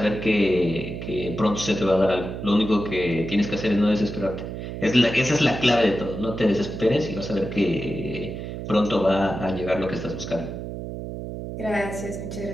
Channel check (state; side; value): noise; right; hum, 7 dB below the sound